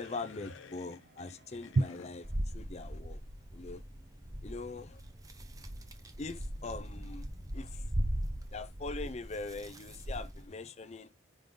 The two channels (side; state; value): both; normal; correlation 0.76